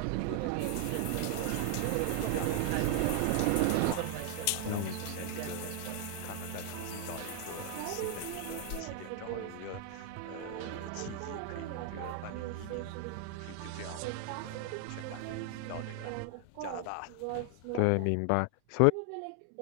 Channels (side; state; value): both; different; correlation 0.00